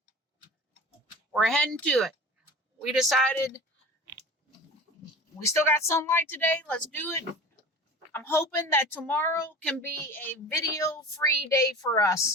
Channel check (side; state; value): both; normal; correlation 0.37